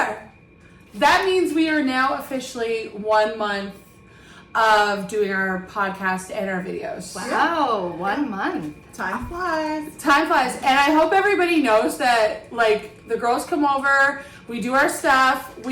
That means we are now officially 1 month of doing our podcast and our videos. Wow, 1 month. Time flies. Time flies. And I hope everybody knows that, like, the girls come over, we do our stuff,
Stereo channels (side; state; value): both; identical; correlation 1.00